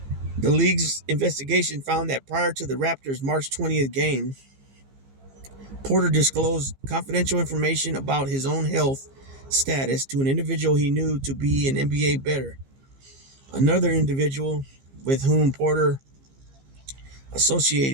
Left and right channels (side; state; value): left; late; 15 ms